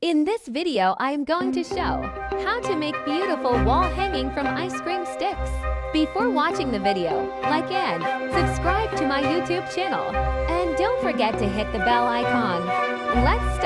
In this video, I am going to show how to make beautiful wall hanging from ice cream sticks. Before watching the video, like and subscribe to my YouTube channel. And don't forget to hit the bell icon. Let's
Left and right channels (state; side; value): identical; both; correlation 1.00